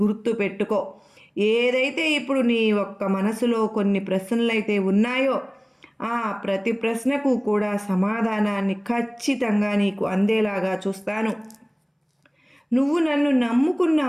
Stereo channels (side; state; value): both; identical; correlation 1.00